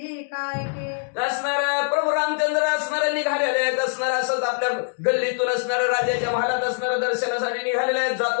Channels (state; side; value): silent; right; 63 dB below the other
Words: काय के. असणार प्रभू रामचंद्र असणारे निघालेले आहेत. असणार असंच आपल्या गल्लीतून असणाऱ्या राजाच्या महालात असणाऱ्या दर्शनासाठी निघालेले आहेत.